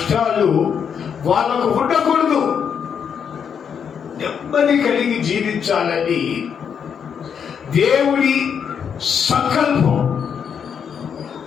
వాళ్ళకు ఉండకూడదు. నెమ్మది కలిగి జీవించాలని దేవుడి సంకల్పం.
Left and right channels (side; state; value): right; quieter; 7.4 dB